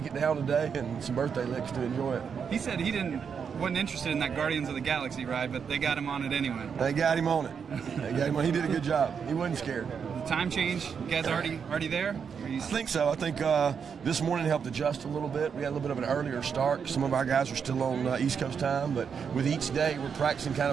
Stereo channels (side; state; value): left; quieter; 6.7 dB